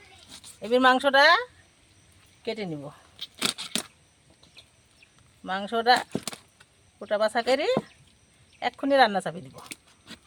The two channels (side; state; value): both; identical; correlation 1.00